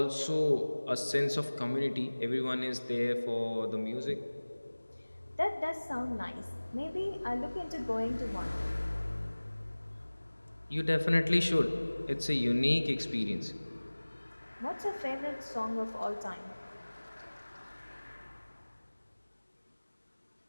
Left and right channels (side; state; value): both; inverted; correlation -1.00